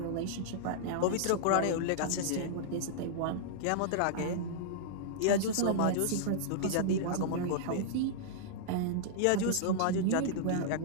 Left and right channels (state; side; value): different; both; correlation -0.02